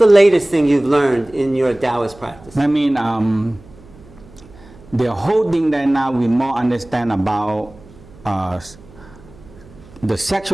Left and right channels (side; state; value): right; noise; hum, 23 dB below the sound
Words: latest thing you've learned in your Taoist practice? I mean, the whole thing that now we more understand about the